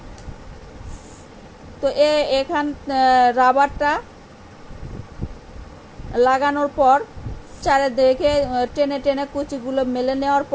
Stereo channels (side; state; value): both; identical; correlation 1.00